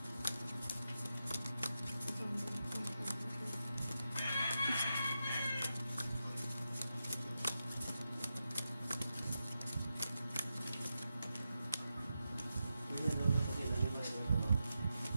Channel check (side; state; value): both; inverted; correlation -0.89